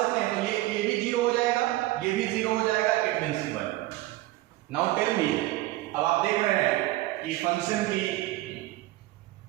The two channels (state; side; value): quieter; left; 17.6 dB